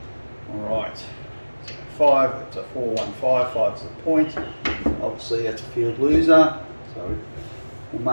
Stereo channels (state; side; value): inverted; both; correlation -1.00